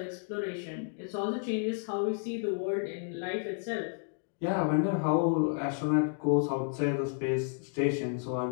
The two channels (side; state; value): right; silent; digital silence